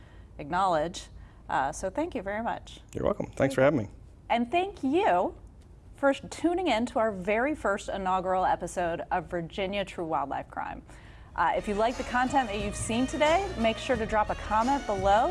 acknowledge. So thank you very much. You're welcome. Thanks for having me. And thank you for tuning in to our very first inaugural episode of Virginia True Wildlife Crime. If you like the content that you've seen today, make sure to drop a comment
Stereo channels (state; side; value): identical; both; correlation 1.00